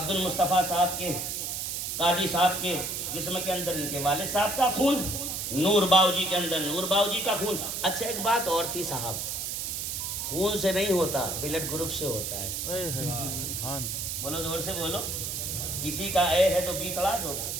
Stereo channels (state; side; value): noise; right; hiss, 3 dB below the sound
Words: المصطفیٰ صاحب کے, قاضی صاحب کے جسم کے اندر ان کے والد صاحب کا خون, نور باؤجی کے اندر نور باؤجی کا خون. اچھا ایک بات اور تھی صاحب, خون سے نہیں ہوتا, بلڈ گروپ سے ہوتا ہے. بولو, زور سے بولو. کسی کا اے ہے تو بی چڑھا دو,